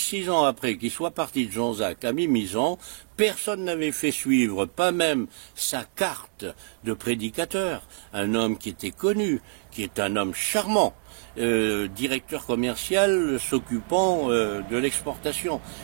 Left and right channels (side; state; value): left; silent; 61 dB below the other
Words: ans après qu'il soit parti de Jean-Jacques à Mimizan. Personne n'avait fait suivre, pas même sa carte de prédicateur. Un homme qui était connu, qui est un homme charmant, directeur commercial s'occupant de l'exportation.